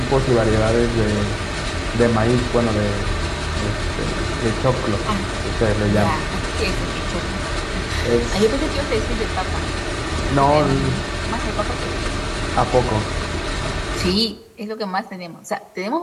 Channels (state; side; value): identical; both; correlation 1.00